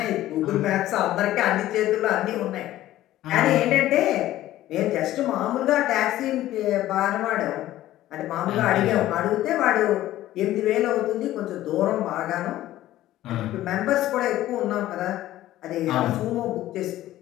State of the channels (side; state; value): right; quieter; 14.4 dB